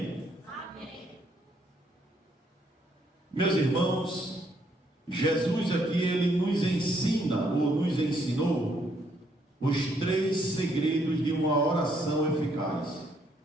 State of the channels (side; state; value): both; normal; correlation 0.71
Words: Amém. Meus irmãos, Jesus aqui, ele nos ensina, ou nos ensinou, os 3 segredos de uma oração eficaz.